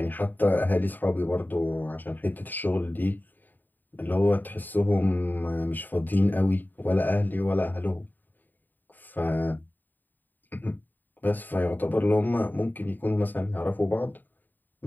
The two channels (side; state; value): right; late; 0.089 ms